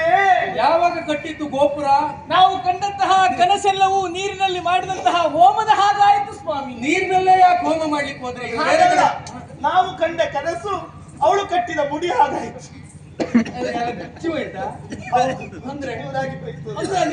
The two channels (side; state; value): both; identical; correlation 1.00